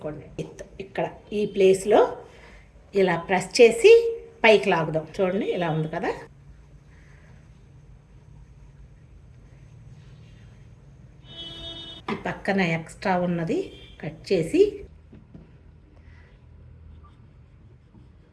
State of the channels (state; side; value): identical; both; correlation 1.00